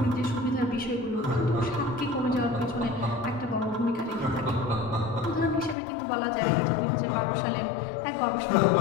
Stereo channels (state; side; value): drops out; right; at 5.8 s